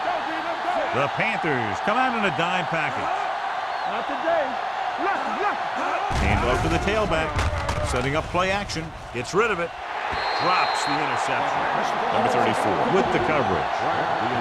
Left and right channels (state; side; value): identical; both; correlation 1.00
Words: go, D. Let's go. The Panthers come out in a dime package. Not today. Left. Hand off to the tailback. Setting up play action. Gets rid of it. Drops the interception. Number 34 with the coverage. The